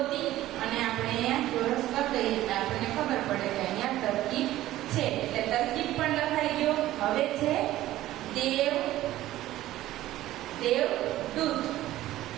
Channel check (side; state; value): left; quieter; 14.9 dB